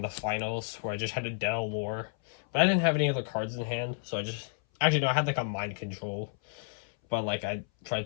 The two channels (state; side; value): silent; right; 57 dB below the other